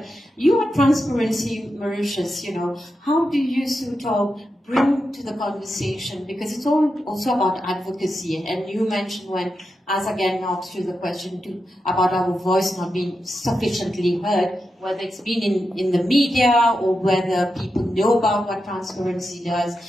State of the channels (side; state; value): both; normal; correlation 0.88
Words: you are Transparency Mauritius. How do you sort of bring to the conversation, because it's all also about advocacy, and you mentioned as again asked you the question about our voice not being sufficiently heard, whether it's been in the media or whether people know about what transparency does.